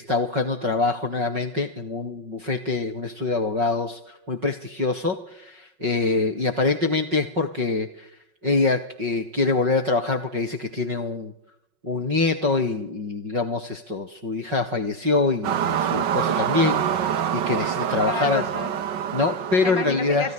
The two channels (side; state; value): left; late; 5.4 ms